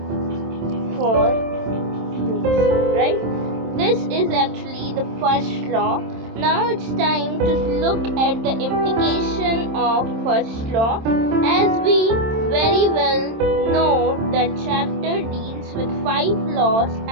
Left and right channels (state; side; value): late; left; 27 ms